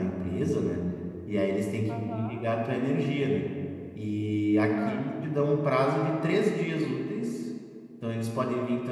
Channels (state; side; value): identical; both; correlation 1.00